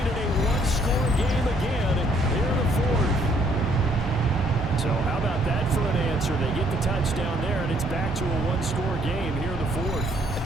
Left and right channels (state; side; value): normal; both; correlation 0.67